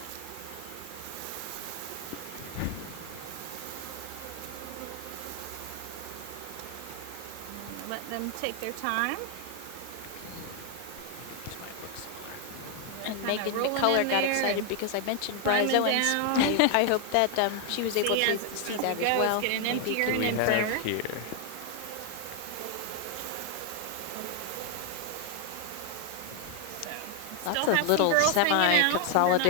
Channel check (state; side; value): different; both; correlation 0.00